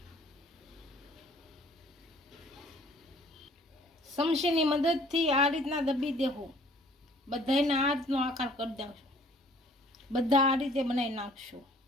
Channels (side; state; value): both; normal; correlation 0.56